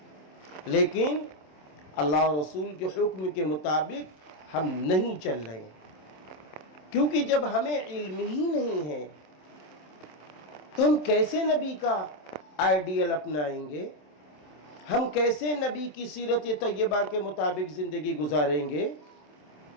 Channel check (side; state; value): right; late; 27 ms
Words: لیکن اللہ اور رسول کے حکم کے مطابق ہم نہیں چل رہے ہیں، کیونکہ جب ہمیں علم ہی نہیں ہے تو ہم کیسے نبی کا آئیڈیل اپنائیں گے، ہم کیسے نبی کی سیرت طیبہ کے مطابق زندگی گزاریں گے۔